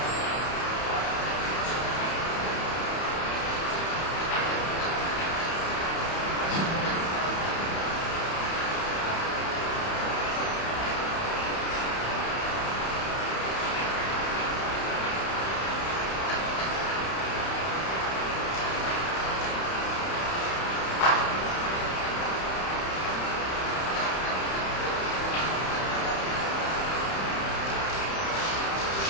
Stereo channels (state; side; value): late; right; 31 ms